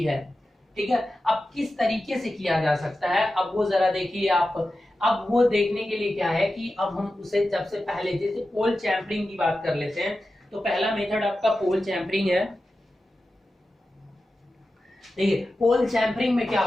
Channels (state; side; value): normal; both; correlation 0.93